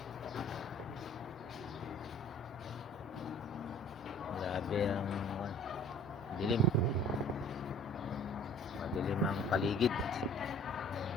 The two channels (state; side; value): normal; both; correlation 0.51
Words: grabe ang dilim. Madilim ang paligid.